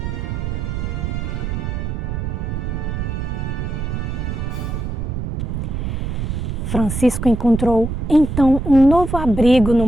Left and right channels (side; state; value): right; noise; rumble, 3 dB below the sound